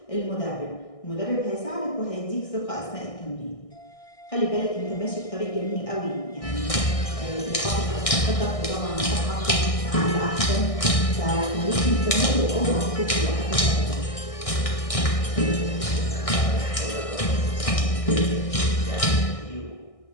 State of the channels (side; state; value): right; late; 1.6 ms